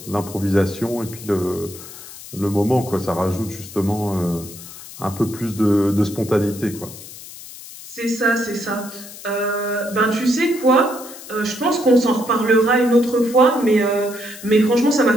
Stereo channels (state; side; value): noise; left; hiss, 15 dB below the sound